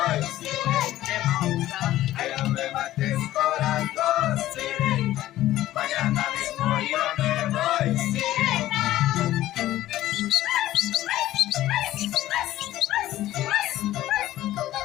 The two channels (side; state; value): right; quieter; 14.6 dB